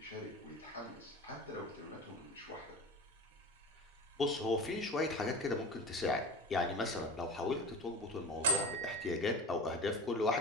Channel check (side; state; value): both; normal; correlation 0.33